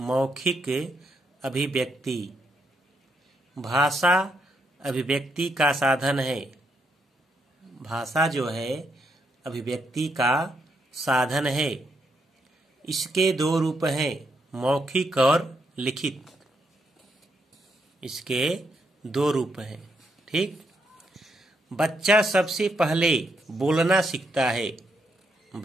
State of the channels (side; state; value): both; normal; correlation 0.78